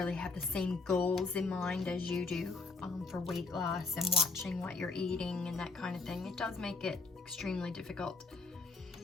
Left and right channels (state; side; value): quieter; right; 3.8 dB